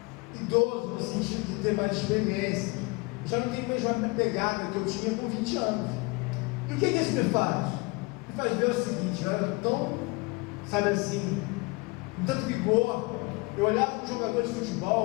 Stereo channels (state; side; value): quieter; right; 26.2 dB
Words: idoso, no sentido de ter mais experiência. Eu já não tenho mais a pegada que eu tinha com 20 anos. E o que isso me faz? Me faz ver o seguinte: eu era tão, sabe assim, com tanto vigor. Eu olhava para um jogador de